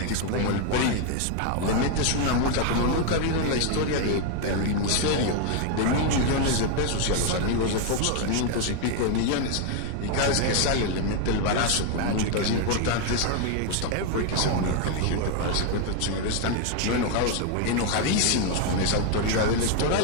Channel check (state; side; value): different; both; correlation 0.01